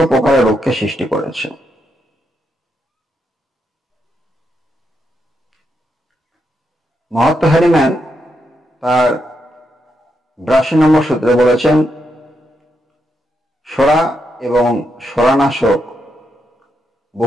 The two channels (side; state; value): both; normal; correlation 0.82